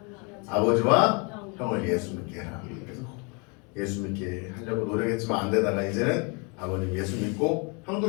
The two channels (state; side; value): quieter; right; 32.4 dB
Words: 아버지와 형을 예수 믿게 해라. 그래서 예수 믿게 하려고 노력했지만 안 되다가 이제는 아버님 예수 믿고